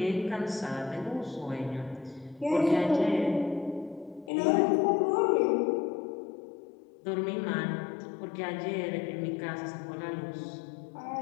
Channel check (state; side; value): drops out; right; at 4.3 s